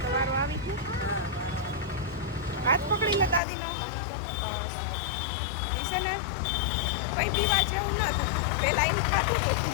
તો વારો આવી ગયો. હાથ પકડી લે દાદીનો. બસ એ છે ને કઈ પીવા જેવું નતું. પેલા એમ ખાતું હતું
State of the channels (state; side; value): drops out; right; at 3.4 s